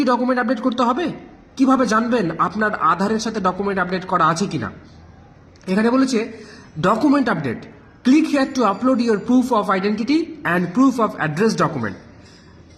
ডকুমেন্ট আপডেট করতে হবে? কিভাবে জানবেন আপনার আধারের সাথে ডকুমেন্ট আপডেট করা আছে কিনা? এখানে বলেছে document update, click here two upload your proof of identity and proof of address document.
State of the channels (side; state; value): both; identical; correlation 1.00